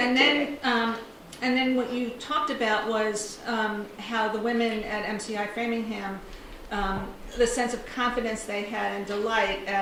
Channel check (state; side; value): identical; both; correlation 1.00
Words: then what you talked about was how the women at MCI Framingham, the sense of confidence they had and delight